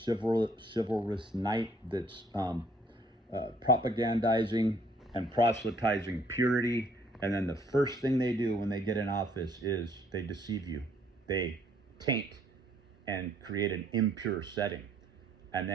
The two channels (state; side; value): normal; both; correlation 0.63